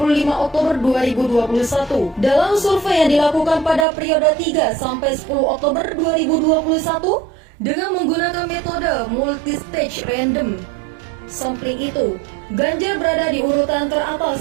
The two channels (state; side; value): drops out; left; at 3.9 s